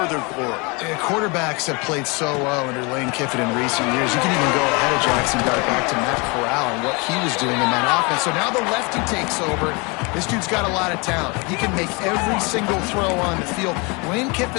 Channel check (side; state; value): right; quieter; 28.9 dB